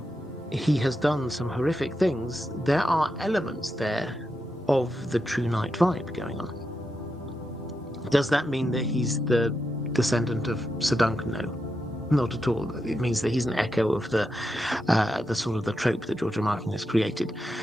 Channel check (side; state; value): both; normal; correlation 0.86